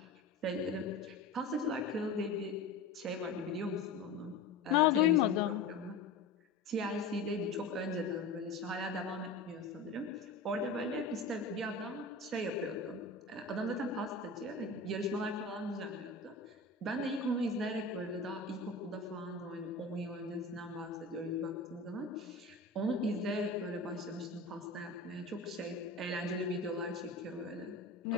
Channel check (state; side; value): quieter; right; 3.4 dB